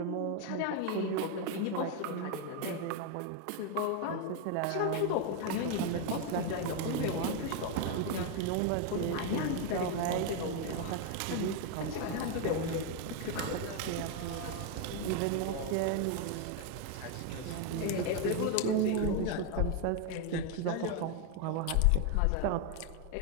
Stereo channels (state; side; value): different; both; correlation 0.01